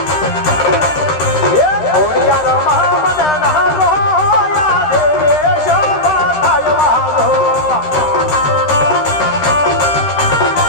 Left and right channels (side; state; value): right; late; 13 ms